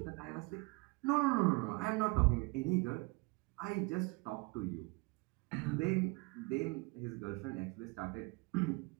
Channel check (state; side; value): quieter; left; 27.5 dB